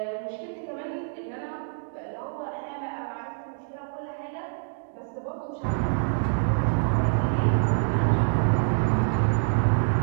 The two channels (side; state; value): left; silent; digital silence